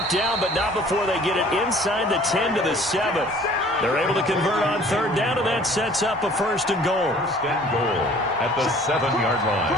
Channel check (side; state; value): both; normal; correlation 0.52